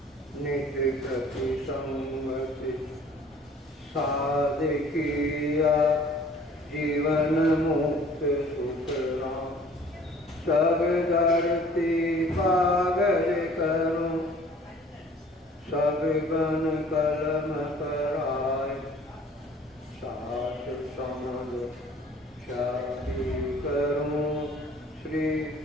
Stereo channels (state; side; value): normal; both; correlation 0.52